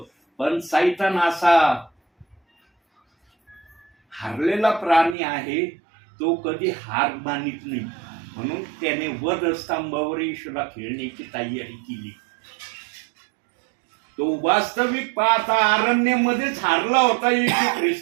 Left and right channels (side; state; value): left; drops out; at 5.2 s